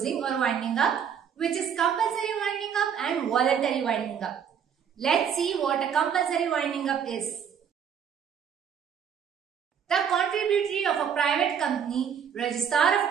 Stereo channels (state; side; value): quieter; left; 7.9 dB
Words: or winding up, which is compulsory winding up and voluntary winding up. Let's see what a compulsory winding up is. The contributory of a private company, registrar